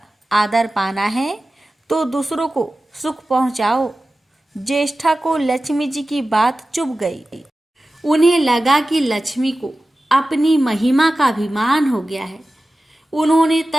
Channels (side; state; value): both; normal; correlation 0.95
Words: आदर पाना है तो दूसरों को सुख पहुंचाओ। ज्येष्ठा को लक्ष्मी जी की बात चुभ गई। उन्हें लगा कि लक्ष्मी को अपनी महिमा का अभिमान हो गया है। उन्होंने